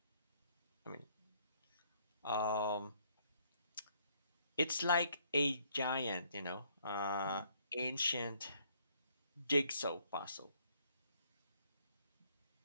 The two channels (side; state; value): both; inverted; correlation -0.66